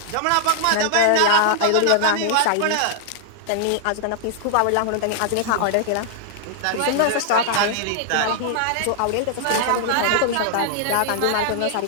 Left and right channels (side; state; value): both; different; correlation -0.01